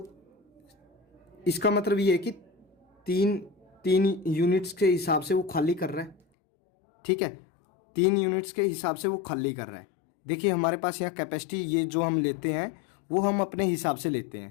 इसका मतलब ये है कि तीन यूनिट्स के हिसाब से वो खाली कर रहा है। ठीक है, 3 यूनिट्स के हिसाब से वो खाली कर रहा है। देखिए हमारे पास यहाँ कैपेसिटी ये जो हम लेते हैं वो हम अपने हिसाब से लेते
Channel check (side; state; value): right; drops out; at 6.2 s